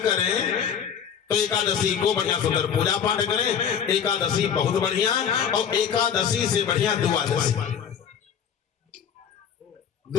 करें, तो एकादशी को बढ़िया सुंदर पूजा पाठ करें। एकादशी बहुत बढ़िया, और एकादशी से बढ़िया द्वादशी।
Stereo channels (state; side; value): quieter; right; 8.0 dB